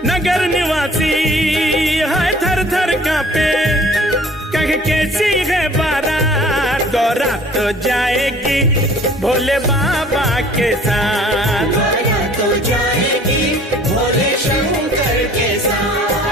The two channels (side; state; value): both; normal; correlation 0.51